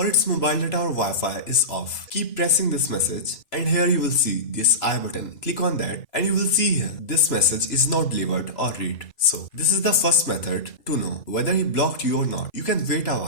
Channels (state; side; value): late; right; 2.9 ms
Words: its mobile data or Wi-Fi is off. Keep pressing this message and here you will see this I button. Click on that and you will see here this message is not delivered or read. So this is the first method to know whether he blocked you or not. You can wait a